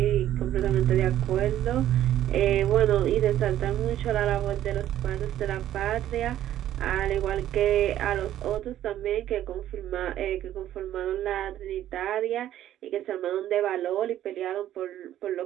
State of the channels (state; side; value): quieter; left; 12.2 dB